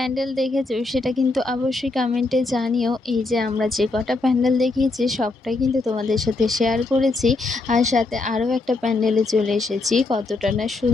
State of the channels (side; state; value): right; quieter; 3.3 dB